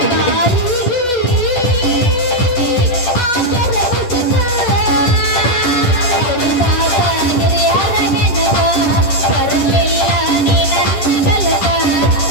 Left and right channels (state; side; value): late; right; 10 ms